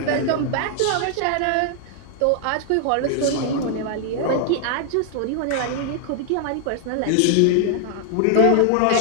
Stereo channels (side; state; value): both; different; correlation 0.00